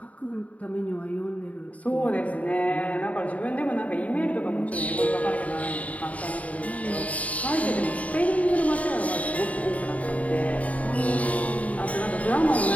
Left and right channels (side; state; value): right; late; 0.069 ms